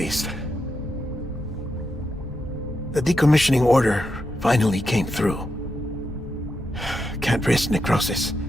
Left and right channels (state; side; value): normal; both; correlation 0.85